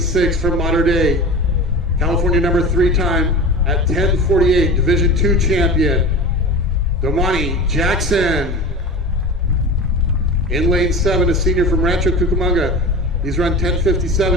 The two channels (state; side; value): normal; both; correlation 0.31